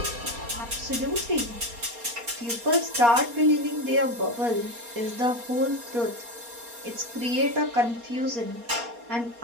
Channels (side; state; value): left; late; 4.2 ms